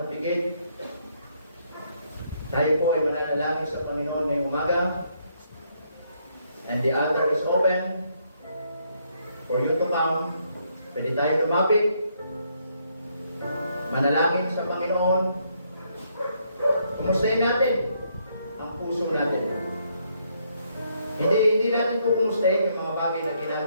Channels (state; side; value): inverted; both; correlation -0.72